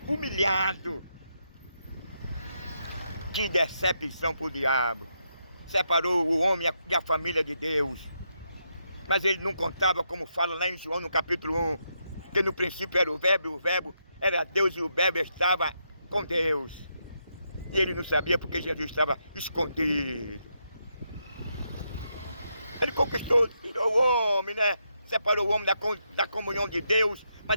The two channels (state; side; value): inverted; both; correlation -0.81